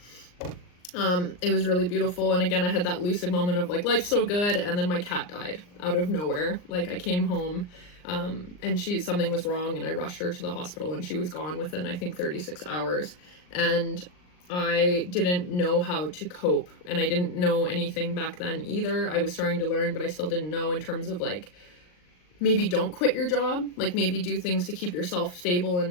It was really beautiful, and again, I had that lucid moment of, like, life's so good, and then my cat died out of nowhere. Like, I came home, and something was wrong, and I rushed her to the hospital, and she was gone within, I think, 36 hours, and I didn't know how to cope, and I didn't know anything back then either. I was starting to learn, but I still didn't know in terms of, like, maybe don't quit your job, like maybe do things to keep yourself stable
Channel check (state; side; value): late; right; 39 ms